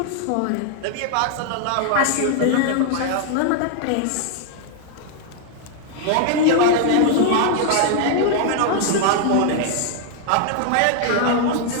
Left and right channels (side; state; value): both; different; correlation 0.00